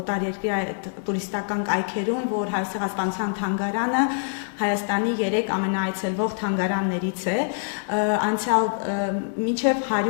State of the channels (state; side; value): silent; right; digital silence